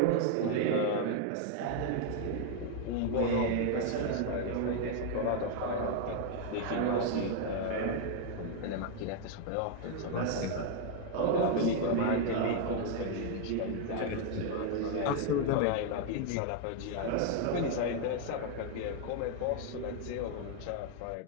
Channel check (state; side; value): different; both; correlation 0.00